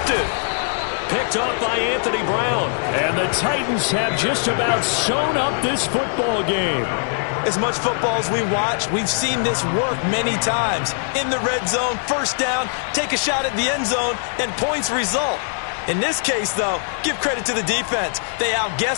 Picked off by Anthony Brown. And the Titans have just about sewn up this football game. As much football as we watch, we've seen this work many times. In the red zone, 1st down, take a shot at the end zone, and points result. In this case, though, give credit to the defense. They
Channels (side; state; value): right; silent; digital silence